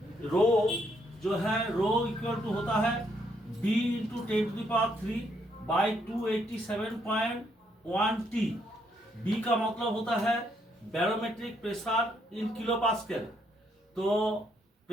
रो जो है, रो इक्वल टू होता है b into 10⁻³ by 287.1 t। b का मतलब होता है barometric pressure in kilo pascal. तो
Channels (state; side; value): normal; both; correlation 0.73